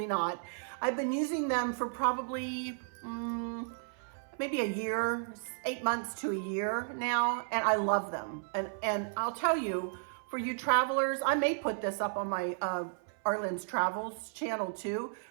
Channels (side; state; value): left; silent; 55 dB below the other